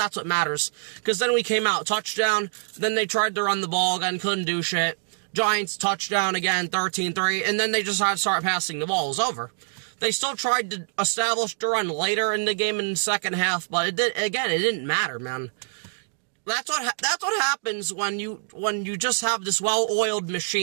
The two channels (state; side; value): silent; left; digital silence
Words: what matters. Because then we came out, touchdown, then they tried to run the ball again, couldn't do shit. Giants, touchdown again, 13-3, and then they just had to start passing the ball. It was over. They still tried to establish the run later in the game in the second half, but it didn't matter, man. That's what happens when you just have this well-oiled